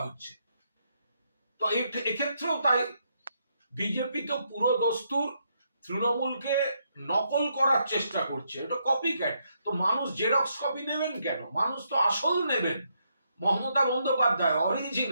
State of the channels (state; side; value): inverted; both; correlation -0.77